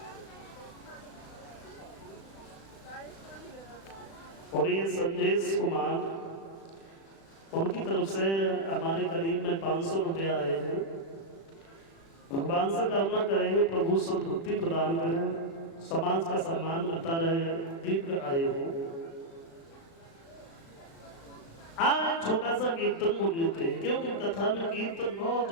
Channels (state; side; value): late; right; 36 ms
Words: और ये संदेश कुमार, उनकी तरफ से हमारे करीब में 500 रुपया आए हैं। भगवान से कामना करेंगे प्रभु सद्बुद्धि प्रदान करें, समाज का सम्मान करता रहे, दीर्घ आयु हो। आज छोटा सा कीर्तन बोल लेते हैं, क्योंकि कथा में कीर्तन बहुत